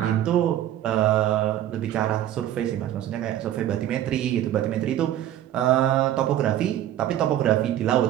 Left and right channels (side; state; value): left; quieter; 12.1 dB